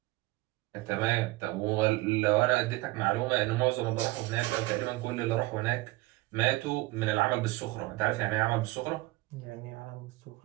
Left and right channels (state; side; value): quieter; left; 20.3 dB